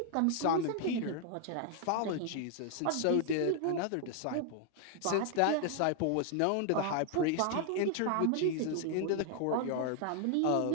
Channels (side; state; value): both; different; correlation 0.00